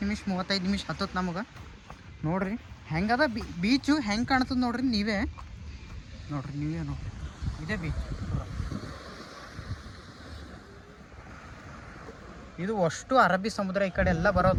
ನಿಮಿಷ 35 ನಿಮಿಷ ಹತ್ತತ್ತು ನಮಗೆ. ನೋಡ್ರಿ ಹೆಂಗದ ಬೀಚು ಹೆಂಗೆ ಕಾಣ್ತದೆ ನೋಡ್ರಿ ನೀವೇ ನೋಡ್ರಿ. ಇದೇ ಬೀಚ್. ಇದು ಅಷ್ಟು ಅರಬ್ಬಿ ಸಮುದ್ರ. ಈ ಕಡೆ ಎಲ್ಲ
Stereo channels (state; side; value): identical; both; correlation 1.00